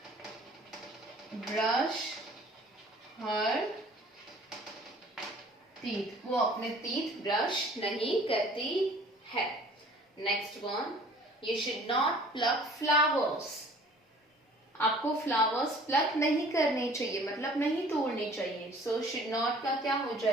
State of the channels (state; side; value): normal; both; correlation 0.51